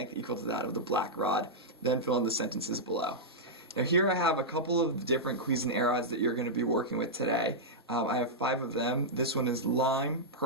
equal to that of the black rod, then fill in the sentences below. Now here I have a couple of different Cuisenaire rods that you're going to be working with today. I have 5 of them. This one is lime,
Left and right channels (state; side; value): normal; both; correlation -0.09